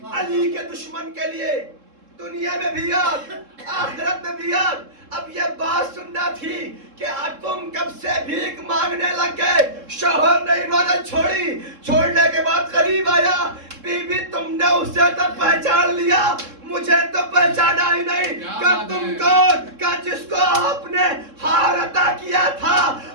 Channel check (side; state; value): left; late; 3.7 ms